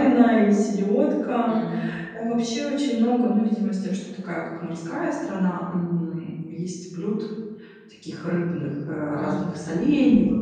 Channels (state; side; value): identical; both; correlation 1.00